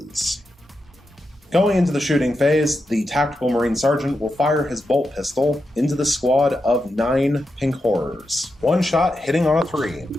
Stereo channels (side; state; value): both; normal; correlation 0.87